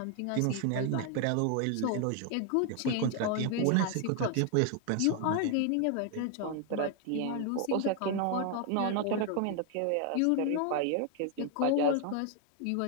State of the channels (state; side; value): different; both; correlation 0.00